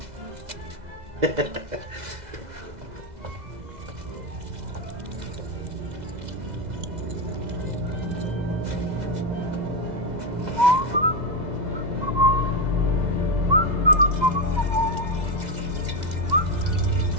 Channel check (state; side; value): late; left; 2.0 ms